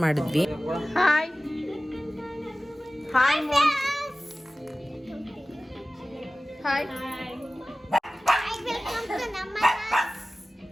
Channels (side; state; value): both; normal; correlation 0.97